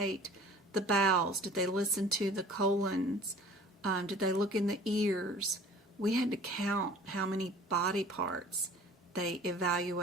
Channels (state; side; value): normal; both; correlation 0.47